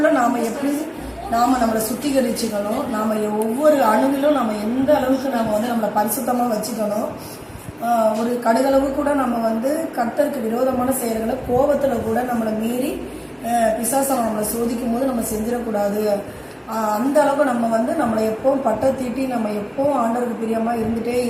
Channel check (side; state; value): both; identical; correlation 1.00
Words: நாம் எப்படி நம்மளை சுத்திகரிச்சுக்கணும், நாம் ஒவ்வொரு அணுவிலும் நம்ம எந்த அளவுக்கு நம்ம வந்து நம்மளை பரிசுத்தமாக வச்சுக்கணும். ஒரு கடுகளவு கூட நம்ம வந்து கர்த்தருக்கு விரோதமான செயல்களை கோபத்தில் கூட நம்மளை மீறி பிசாசம் நம்மளை சோதிக்கும் போது நம்ம செஞ்சிடக்கூடாது. அந்த அளவுக்கு நம்ம வந்து நம்மளை எப்பவும் பட்டை தீட்டி நம்ம எப்பவும் ஆண்டவருக்கு பிரியமாக இருந்துகிட்டே